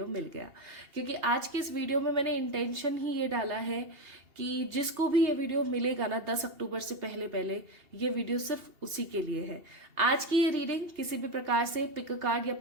मिल गया, क्योंकि आज के इस वीडियो में मैंने इंटेंशन ही ये डाला है कि जिसको भी ये वीडियो मिलेगा ना 10 अक्टूबर से पहले पहले, ये वीडियो सिर्फ उसी के लिए है। आज की ये रीडिंग किसी भी प्रकार से पिक अ कार्ड या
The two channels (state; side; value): late; left; 2.7 ms